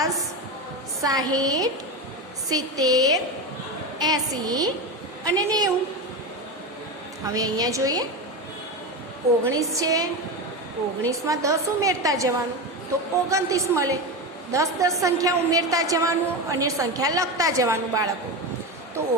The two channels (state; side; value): normal; both; correlation 0.19